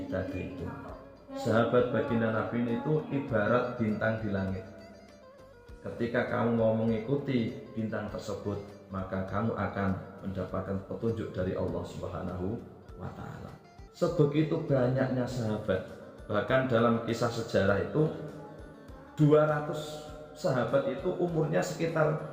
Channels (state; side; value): identical; both; correlation 1.00